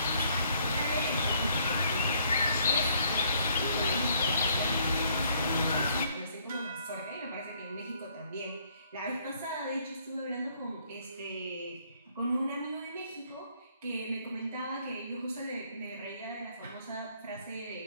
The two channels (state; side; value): inverted; both; correlation -0.65